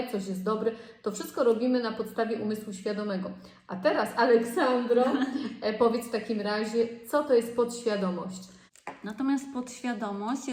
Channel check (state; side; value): identical; both; correlation 1.00